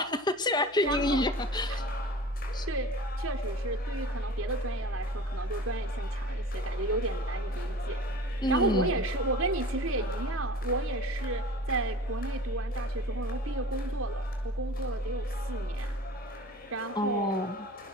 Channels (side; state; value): left; noise; hum, 29 dB below the sound